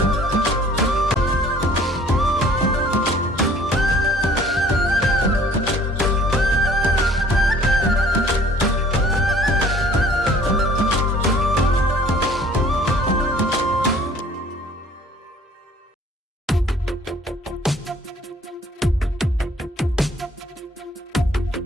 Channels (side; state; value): both; normal; correlation 0.54